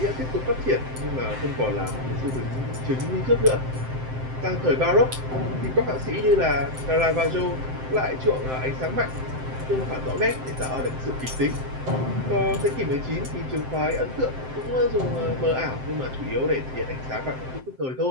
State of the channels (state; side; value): late; left; 7.7 ms